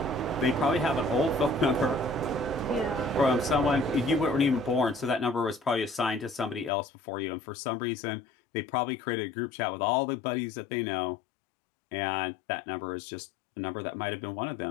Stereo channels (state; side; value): drops out; right; at 6.7 s